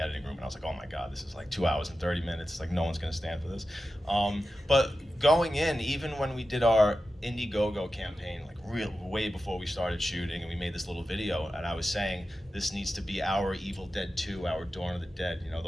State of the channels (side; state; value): both; normal; correlation 0.93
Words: room and I was like, oh my god, this is like 2 hours and 30 minutes. It's like no one's gonna stand for this. But going in, even when we did our Indiegogo campaign, like way before we started shooting, and we made this little video, and I was saying this needs to be our Evil Dead 2, our Dawn of the Dead,